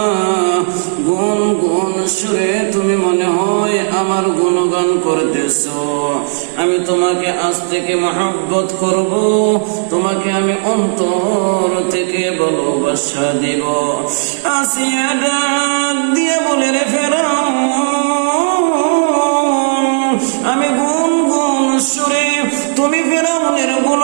গুন গুন সুরে তুমি মনে হয় আমার গুণগান করতেছ। আমি তোমাকে আজ থেকে মহব্বত করব, তোমাকে আমি অন্তর থেকে ভালোবাসা দিব। আসিয়া ডাক দিয়া বলে, রে ফেরাউন, আমি গুন গুন সুরে তুমি ফেরাউনের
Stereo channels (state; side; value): silent; left; digital silence